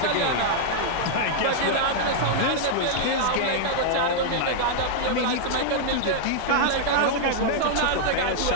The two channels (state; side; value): different; both; correlation -0.01